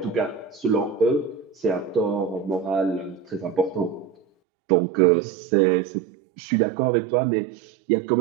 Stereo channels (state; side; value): drops out; left; at 4.2 s